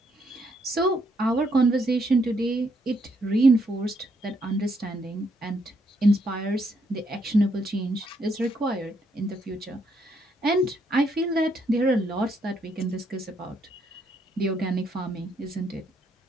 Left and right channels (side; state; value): both; normal; correlation 0.74